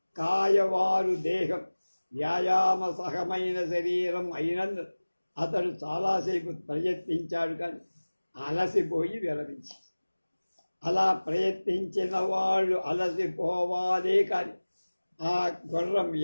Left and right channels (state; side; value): inverted; both; correlation -1.00